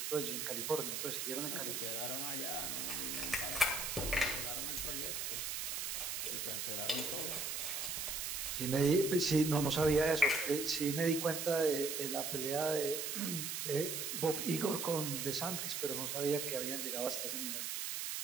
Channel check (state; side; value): noise; right; hiss, 2 dB below the sound